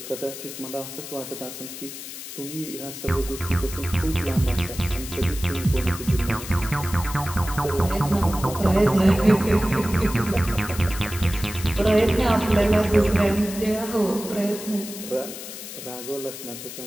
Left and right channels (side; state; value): left; noise; hiss, 11 dB below the sound